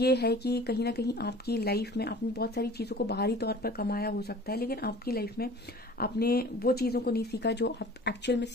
है कि कहीं ना कहीं आपकी लाइफ में आपने बहुत सारी चीज़ों को बाहरी तौर पर कमाया हो सकता है, लेकिन आपकी लाइफ में आपने वो चीज़ों को नहीं सीखा जो आप एक्चुअल में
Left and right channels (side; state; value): both; normal; correlation 0.45